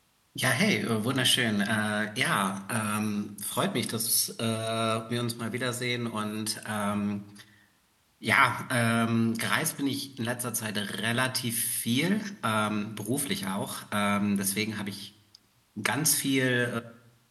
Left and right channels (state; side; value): identical; both; correlation 1.00